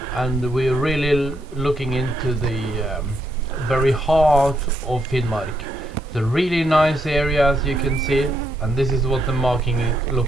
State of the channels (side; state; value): both; normal; correlation 0.77